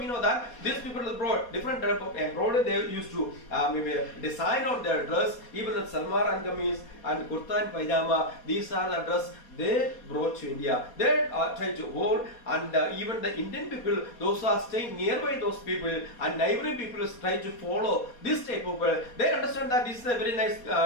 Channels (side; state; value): right; late; 4.2 ms